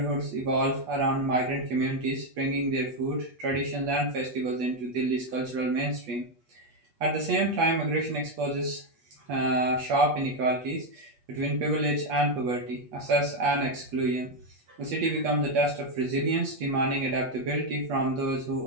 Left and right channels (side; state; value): left; late; 8.3 ms